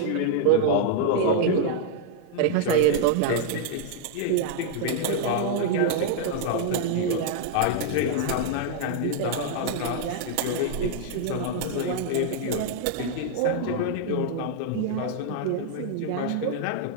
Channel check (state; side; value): different; both; correlation 0.00